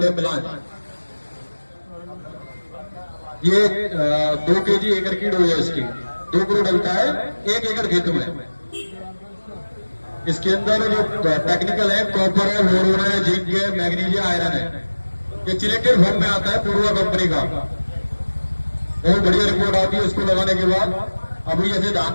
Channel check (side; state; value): both; inverted; correlation -1.00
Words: है, मिलान। ये 2 kg एकड़ की डोज है इसकी, 2 किलो डलता है 1 एकड़ खेत में। इसके अंदर जो टेक्निकल है, कॉपर है, बोरोन है, जिंक है, मैग्नीशियम, आयरन है। ये चिलेटेड फॉर्म में आता है पूर्वा कंपनी का, बहुत बढ़िया रिपोर्ट आती है इसको लगाने के बाद। अभी जैसे धान